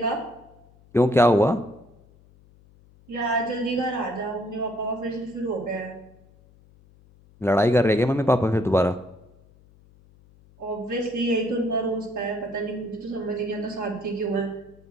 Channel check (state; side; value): noise; left; hum, 27 dB below the sound